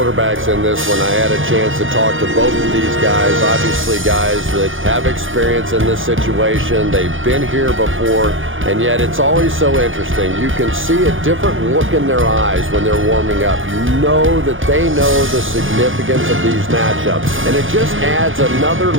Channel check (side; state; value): left; late; 0.58 ms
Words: in this one. I had a chance to talk to both of these guys, obviously guys that have experience in this situation. They've been here before, and yet it's always so interesting. You can see a different look in their eyes when they're warming up. You know that they know the significance of these matchups, and it just adds another